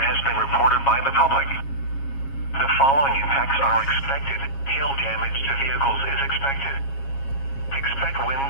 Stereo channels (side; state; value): right; late; 7.3 ms